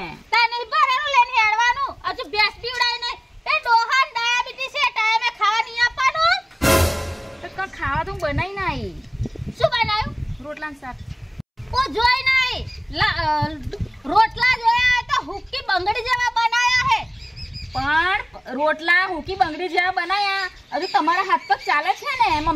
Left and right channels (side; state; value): both; identical; correlation 1.00